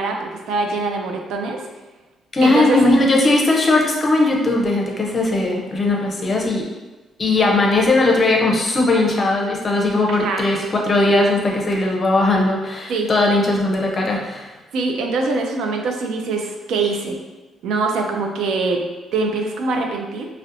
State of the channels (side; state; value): both; normal; correlation 0.72